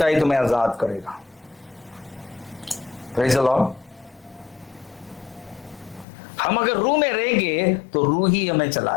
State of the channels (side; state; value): right; drops out; at 6.1 s